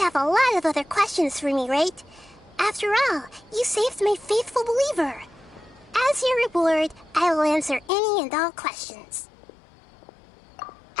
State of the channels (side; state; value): right; drops out; at 7.9 s